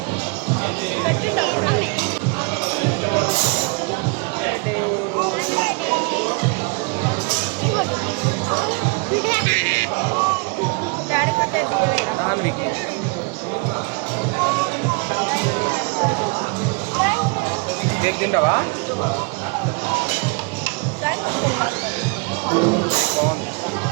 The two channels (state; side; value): quieter; left; 30.9 dB